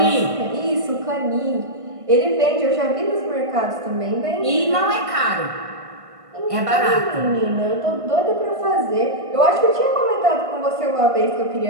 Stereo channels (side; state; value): left; late; 1.5 ms